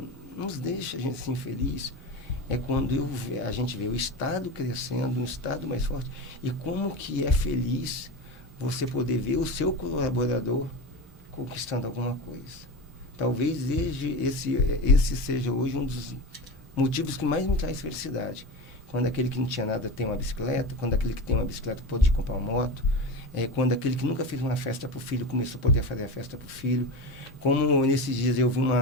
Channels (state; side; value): normal; both; correlation 0.25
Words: nos deixa a gente assim feliz é quando a gente vê o Estado crescendo, um Estado mais forte, e como que é feliz você poder ver o seu colaborador conquistando alguma coisa. Talvez esse seja hoje um dos motivos que mais me traz felicidade. Quando aquele que não tinha nada tem uma bicicleta, quando aquele que tem uma bicicleta pode comprar uma moto, quando aquele que nunca fez uma festa para o filho começou a poder fazer a festa para o filho. Como nesses dias eu vi